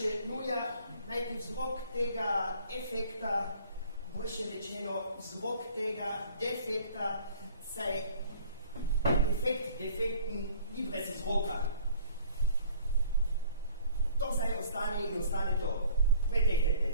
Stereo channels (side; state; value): both; inverted; correlation -0.52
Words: nuja najti vzrok tega efekta, boljše rečeno vzrok tega defekta, saj efekt defekten ni brez vzroka. To zdaj ostane in ostane to. Pretehtete.